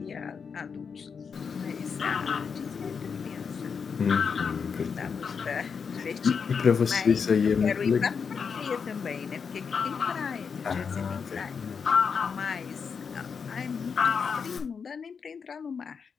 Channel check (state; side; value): quieter; right; 6.0 dB